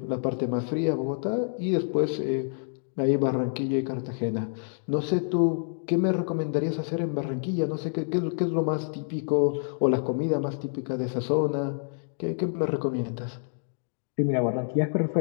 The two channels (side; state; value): right; silent; digital silence